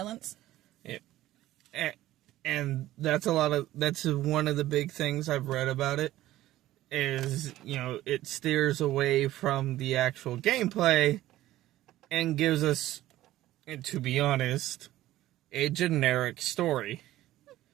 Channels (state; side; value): quieter; left; 15.0 dB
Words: And that's one of the big things I've read about it, is, it steers away from the actual gameplay and gives us, and to be honest, a generic story.